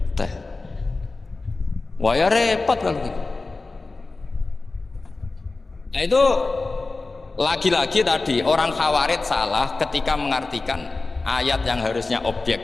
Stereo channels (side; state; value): right; quieter; 3.5 dB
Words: teh. Wah ya repot kalau gitu. Nah itu lagi-lagi tadi orang Khawarij salah ketika mengartikan ayat yang harusnya